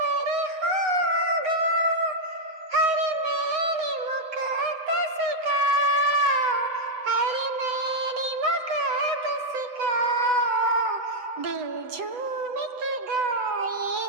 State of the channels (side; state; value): left; late; 7.9 ms